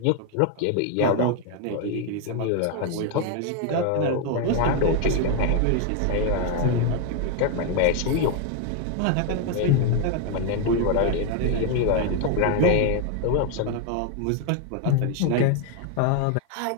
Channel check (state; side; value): different; both; correlation 0.01